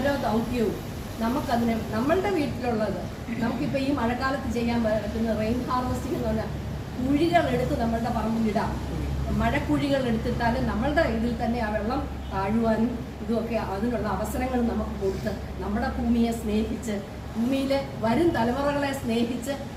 ദൗത്യവും നമുക്കതിനെ നമ്മളുടെ വീട്ടിലുള്ളത്, നമുക്കിപ്പോൾ ഈ മഴക്കാലത്ത് ചെയ്യാൻ പറ്റുന്ന റെയിൻ ഹാർവെസ്റ്റിംഗ് എന്ന് പറഞ്ഞാൽ കുഴികൾ എടുത്ത് നമ്മളുടെ പറമ്പിലിടാം. മഴക്കുഴികൾ എടുത്തിട്ടാലും നമ്മളുടെ ഇതിൽ തന്നെ ആ വെള്ളം താഴുവാനും ഇതുമൊക്കെ അതിനുള്ള അവസരങ്ങൾ നമുക്ക് കൊടുത്ത് നമ്മുടെ ഭൂമിയെ സ്നേഹിച്ച്, ഭൂമിയിലെ വരും തലമുറകളെ സ്നേഹിച്ച്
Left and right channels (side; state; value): both; identical; correlation 1.00